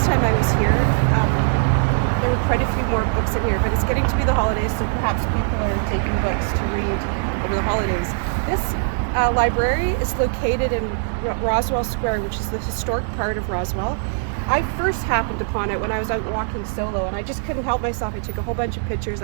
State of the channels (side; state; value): left; silent; digital silence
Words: time I was here, there were quite a few more books in here, but it's getting to be the holidays, so perhaps people are taking books to read over the holidays. This library is located in Roswell Square, which is the historic part of Roswell. I first happened upon it when I was out walking solo, and I just couldn't help myself. I took a whole bunch of pictures.